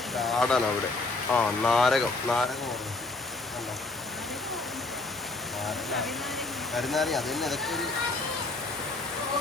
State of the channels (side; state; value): right; quieter; 3.3 dB